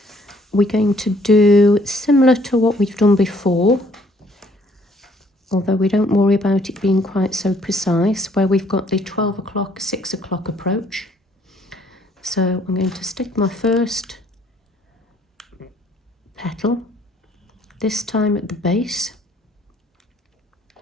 we're going to do similar to what we've done before, although we don't worry about it being quite so precise, where we've got the 12 o'clock, 6 o'clock approach. So I'm going to stick my first petal, this time at the base,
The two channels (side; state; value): both; normal; correlation 0.63